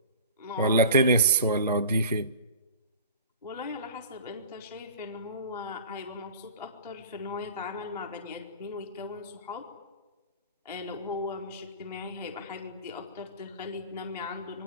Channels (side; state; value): both; inverted; correlation -0.38